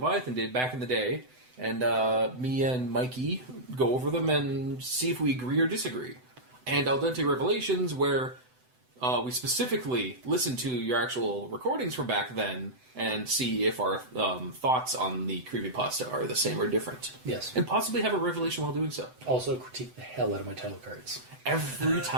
did back in the day, and me and Mikey go over them and see if we agree or disagree. And Al Dente Revelations, where we specifically listen to your actual recordings from back then and see if our thoughts on the creepypasta are the same or different. Yes. And possibly have a revelation while doing so. Also critique the hell out of my title cards. Every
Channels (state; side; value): late; left; 7.9 ms